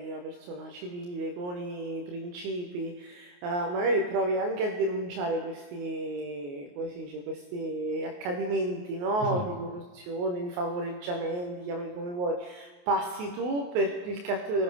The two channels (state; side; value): late; left; 28 ms